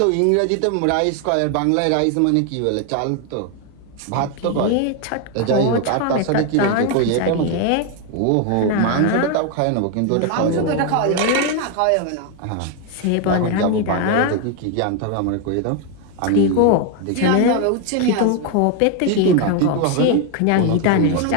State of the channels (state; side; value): different; both; correlation 0.01